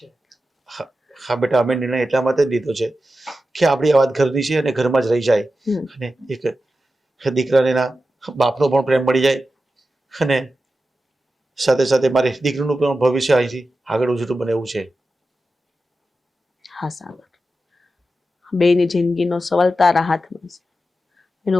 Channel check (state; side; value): normal; both; correlation 0.92